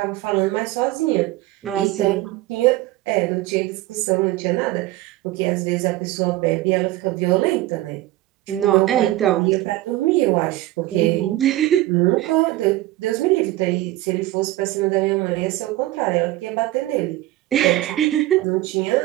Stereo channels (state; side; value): quieter; left; 16.3 dB